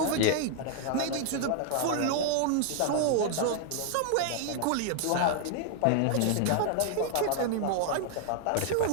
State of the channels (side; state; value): both; different; correlation 0.00